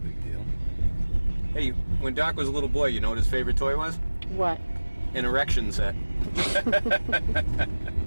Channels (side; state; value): both; inverted; correlation -1.00